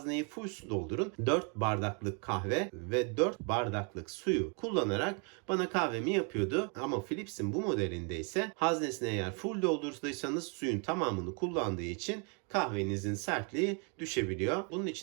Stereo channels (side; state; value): left; quieter; 37.2 dB